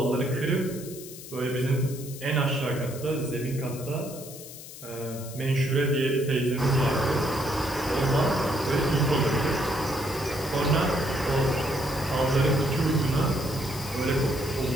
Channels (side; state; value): left; noise; hiss, 14 dB below the sound